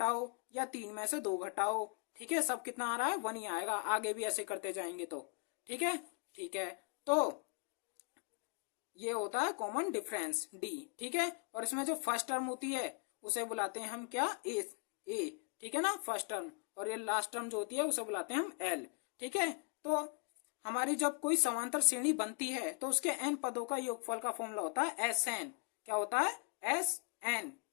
या 3 में से 2 घटाओ, ठीक है। सब कितना आ रहा है? 1 ही आएगा। आगे भी ऐसे करते जाएंगे तो, ठीक है, ठीक है। तो ये होता है कॉमन डिफरेंस, डी, ठीक है। और इसमें जो फर्स्ट टर्म होती है उसे बुलाते हैं हम क्या? ए, ठीक है ना, फर्स्ट टर्म। और ये लास्ट टर्म जो होती है उसे बुलाते हैं हम एल, ठीक है। तो हमारी जब कोई समांतर श्रेणी बनती है तो उसके एन पदों का योगफल का फॉर्मूला होता है एस एन। क्या होता है? एस एन,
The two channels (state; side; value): quieter; right; 37.5 dB